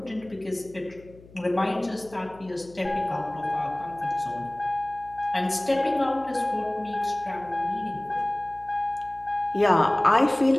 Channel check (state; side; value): noise; left; hum, 22 dB below the sound